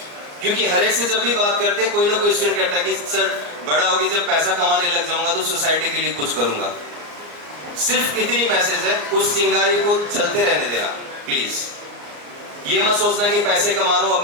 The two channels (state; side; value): late; left; 34 ms